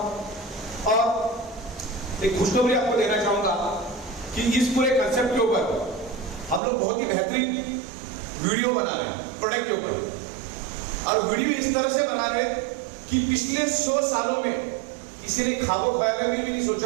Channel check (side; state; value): left; drops out; at 6.6 s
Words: और एक खुशखबरी आपको देना चाहूंगा कि इस पूरे कंसेप्ट के ऊपर हम लोग बहुत ही बेहतरीन वीडियो बना रहे हैं प्रोडक्ट के ऊपर। और वीडियो इस तरह से बना रहे कि पिछले 100 सालों में किसी ने ख्वाबों ख्याल में भी नहीं